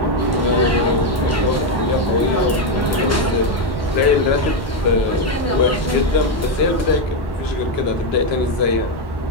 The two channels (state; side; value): normal; both; correlation 0.05